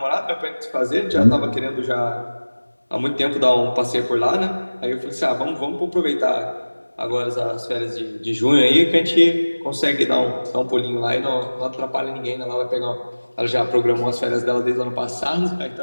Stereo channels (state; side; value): inverted; both; correlation -1.00